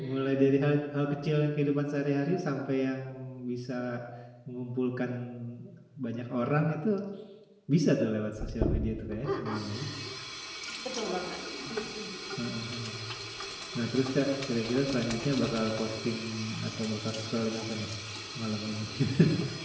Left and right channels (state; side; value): identical; both; correlation 1.00